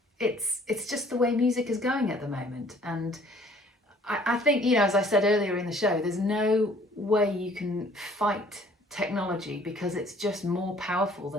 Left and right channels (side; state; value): both; normal; correlation 0.57